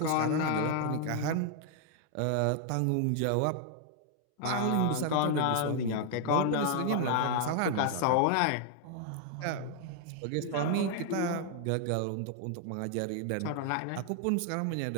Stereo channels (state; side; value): different; both; correlation 0.00